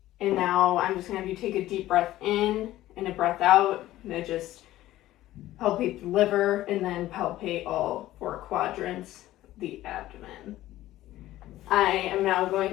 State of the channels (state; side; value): quieter; right; 15.1 dB